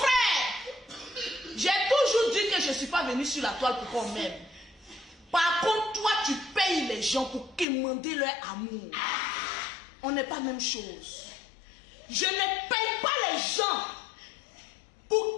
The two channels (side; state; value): right; drops out; at 7.7 s